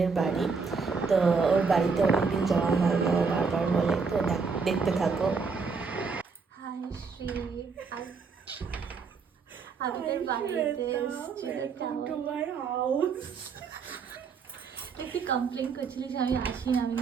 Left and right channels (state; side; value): quieter; left; 5.1 dB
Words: বাড়ি। তো ওর বাড়িতে অনেকদিন যাওয়া হয় না, ও বারবার বলে, তো দেখতে থাকো। হাই শ্রী, আজ আমি তোর বাড়িতে এসেছি একটু কমপ্লেন করছিলি যে আমি আসি না, আমি